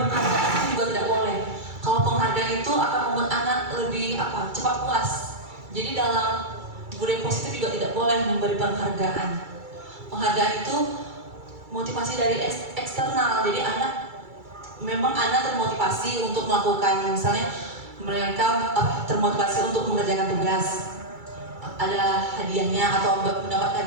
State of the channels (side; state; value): left; late; 2.3 ms